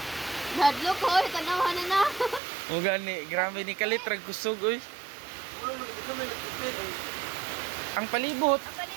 Nadlok ko, tanawa na. O gani, grabe ni kalit rag kusog, oy. Ang palibot. Ang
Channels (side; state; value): left; drops out; at 2.4 s